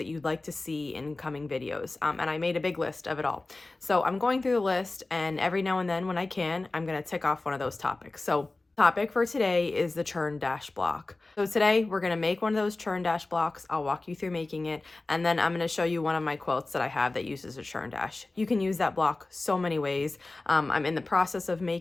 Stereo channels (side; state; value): right; quieter; 3.2 dB